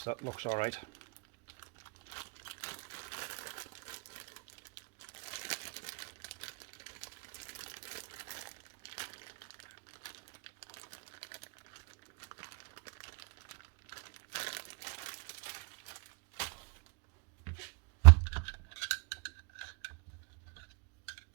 that looks alright.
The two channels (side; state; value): left; quieter; 32.6 dB